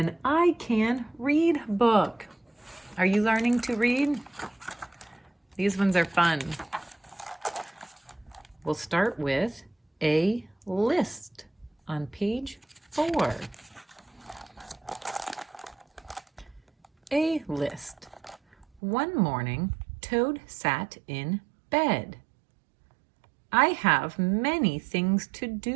I Can Read book. Are you learning to read? These ones are fun. We'll start with a list on page 4. A list. One morning, Toad sat in bed. I have many things to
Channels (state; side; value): drops out; left; at 18.7 s